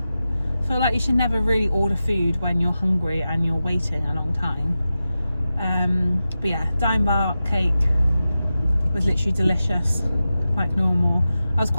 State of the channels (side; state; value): both; inverted; correlation -0.93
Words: I feel like you should never really order food when you're hungry and you're waiting a long time. But yeah, dime bar cake was literally delicious, like normal. I was